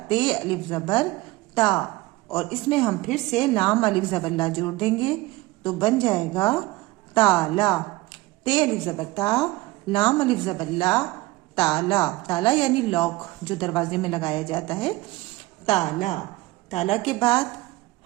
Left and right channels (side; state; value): left; quieter; 19.7 dB